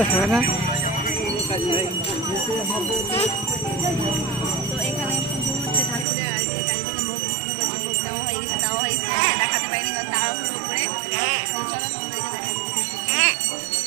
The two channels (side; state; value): left; drops out; at 6.1 s